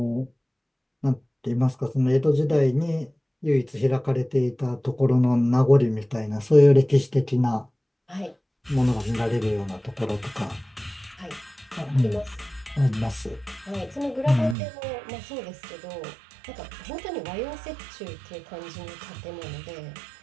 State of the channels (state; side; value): drops out; left; at 14.6 s